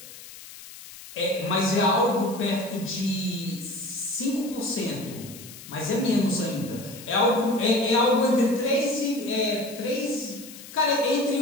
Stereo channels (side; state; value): left; noise; hiss, 16 dB below the sound